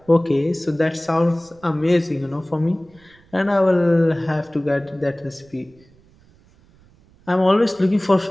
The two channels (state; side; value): noise; right; rumble, 30 dB below the sound